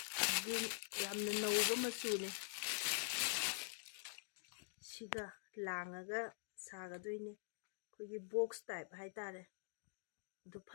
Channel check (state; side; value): silent; right; digital silence